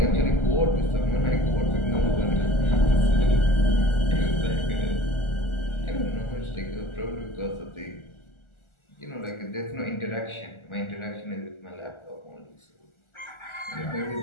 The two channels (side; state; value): right; late; 1.4 ms